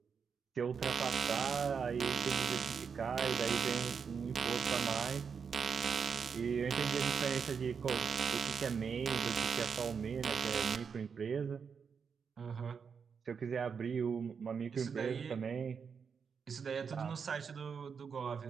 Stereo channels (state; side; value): quieter; left; 6.2 dB